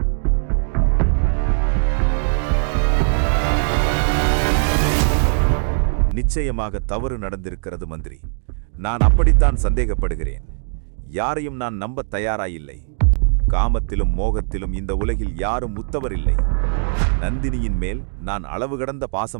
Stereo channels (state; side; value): silent; left; digital silence